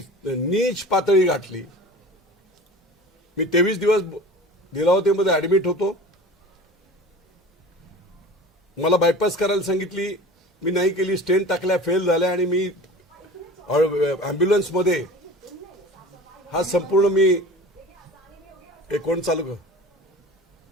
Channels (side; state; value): both; normal; correlation 0.38